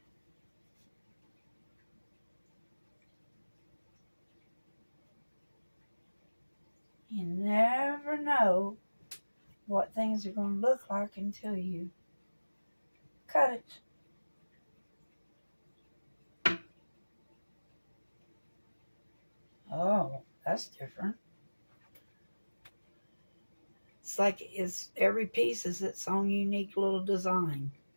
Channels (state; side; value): inverted; both; correlation -1.00